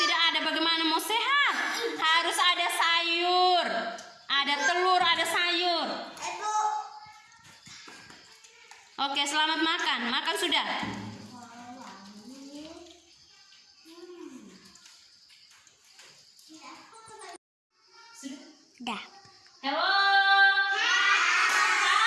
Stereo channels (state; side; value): identical; both; correlation 1.00